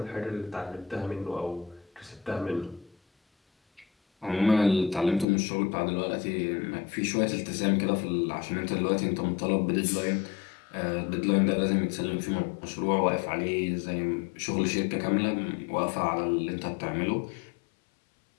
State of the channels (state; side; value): drops out; right; at 5.2 s